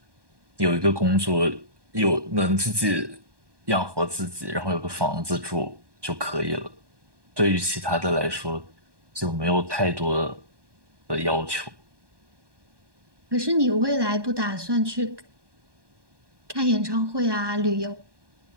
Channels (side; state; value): left; late; 1.2 ms